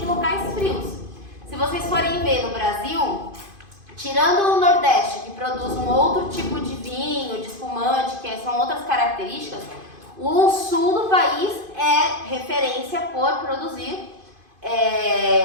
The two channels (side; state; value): left; late; 2.5 ms